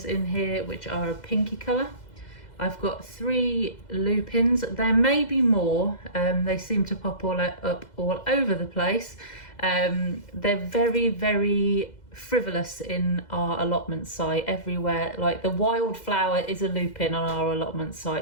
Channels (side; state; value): right; late; 2.0 ms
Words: in here, which are a pinky colour. I've got 3 lupins. There may be more. They seem to pop up all over the place. They're very, very frivolous in our allotment site everywhere. Like the wildflower is a lupin on our allotment